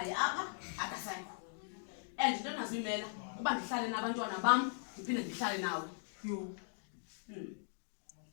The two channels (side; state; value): right; silent; digital silence